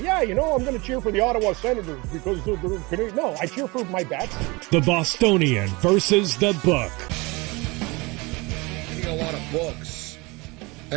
yeah, you know, I'm going to cheer for the Ottawa Senators because they're Canadian. No, I cheer for my bets. The Bostonian versus the Book. A lot of books,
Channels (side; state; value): left; quieter; 24.9 dB